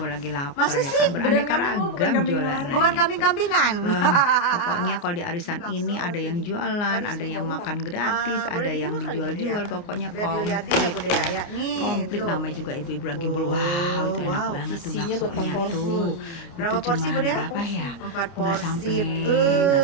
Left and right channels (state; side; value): late; right; 29 ms